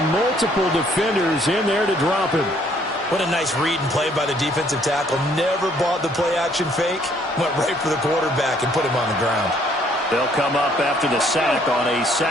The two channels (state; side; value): normal; both; correlation 0.64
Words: Multiple defenders in there to drop him. What a nice read and play by the defensive tackle. Never bought the play-action fake. Went right for the quarterback and put him on the ground. They'll come up after the sack on a